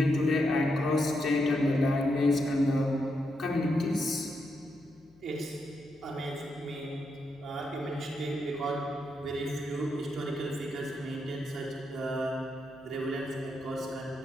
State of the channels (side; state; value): left; noise; hum, 28 dB below the sound